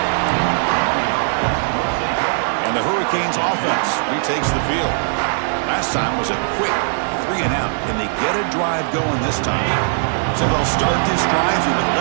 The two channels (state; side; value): silent; left; 66 dB below the other